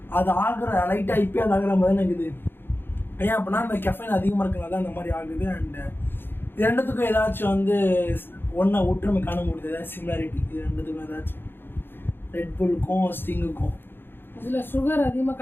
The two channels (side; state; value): right; late; 0.10 ms